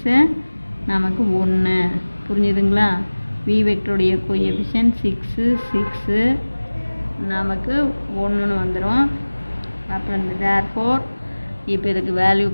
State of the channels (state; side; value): inverted; both; correlation -1.00